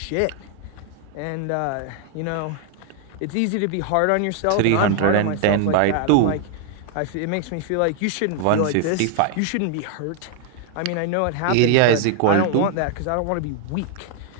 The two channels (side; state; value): both; different; correlation 0.00